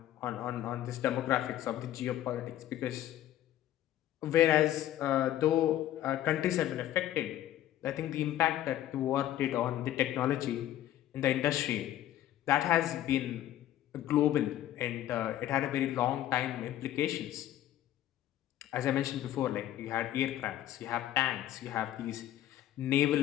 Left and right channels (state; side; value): quieter; right; 12.8 dB